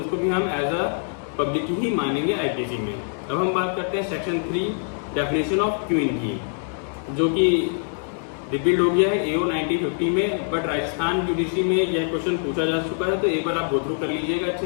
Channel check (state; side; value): silent; right; 63 dB below the other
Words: भी हम एज अ पब्लिक ही मानेंगे आईपीसी में। अब हम बात करते हैं सेक्शन 3 डेफिनेशन ऑफ क्वीन की, जो कि रिपीट हो गया है AO 1950 में, बट राजस्थान जुडिशरी में यह क्वेश्चन पूछा जा चुका है, तो एक बार आप गो थ्रू कर लीजिएगा अच्छे